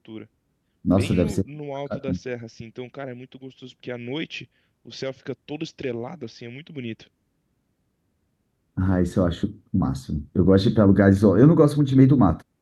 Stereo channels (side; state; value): both; identical; correlation 1.00